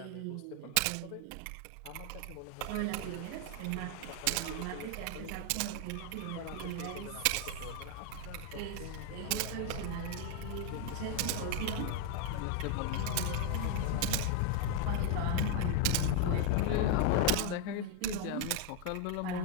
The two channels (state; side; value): different; both; correlation 0.01